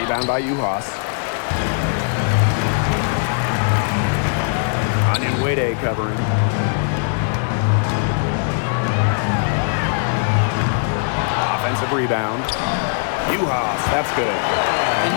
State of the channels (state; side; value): silent; right; digital silence